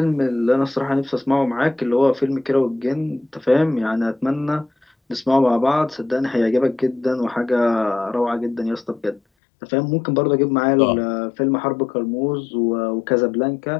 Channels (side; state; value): right; drops out; at 9.2 s